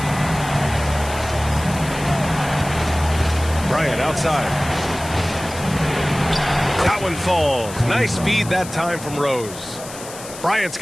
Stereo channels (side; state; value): left; noise; hiss, 14 dB below the sound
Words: Bryant outside. That one falls. Nice feed that time from Rose. Bryant's